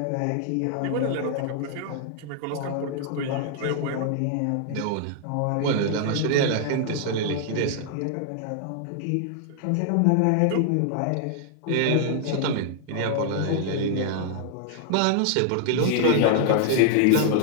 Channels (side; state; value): both; different; correlation 0.00